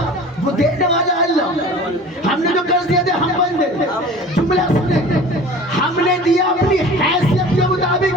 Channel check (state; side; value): normal; both; correlation 0.41